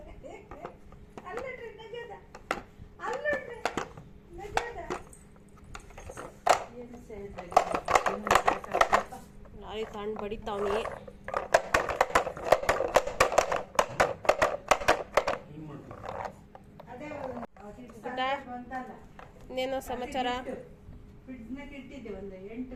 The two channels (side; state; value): both; identical; correlation 1.00